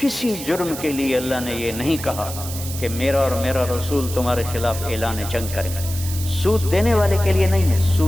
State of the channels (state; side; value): noise; right; hiss, 10 dB below the sound